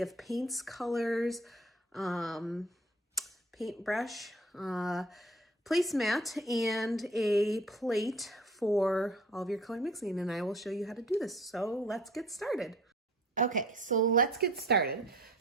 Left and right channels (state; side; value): normal; both; correlation 0.49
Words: of paints, colors, paintbrush, placemat, and a plate for all of your color mixing, and I will show you how to do this. So let's get started. Okay, so let's get started.